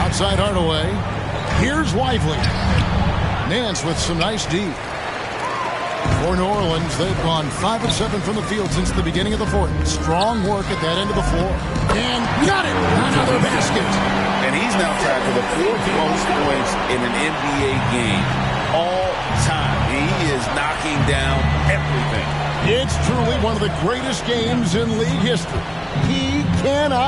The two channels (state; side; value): identical; both; correlation 1.00